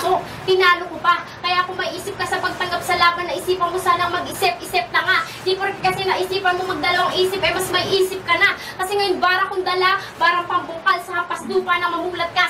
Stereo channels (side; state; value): both; identical; correlation 1.00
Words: Tinalo ko pa. Kaya kung may isip ka sa pagtanggap sa laban, naisipan mo sanang mag-isip-isip na nga. Di po kasi naisipan mo magdalawang isip, eh mas may isip ka na. Kasi ngayon bara kong dala, barang pambungkal sa hampas lupa na mamulat